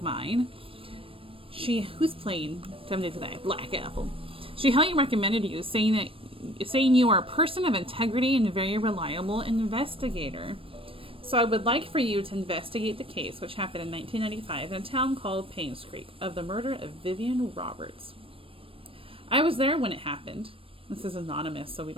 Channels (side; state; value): left; late; 0.26 ms